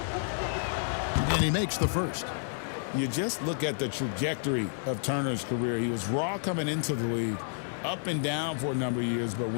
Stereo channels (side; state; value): right; silent; 58 dB below the other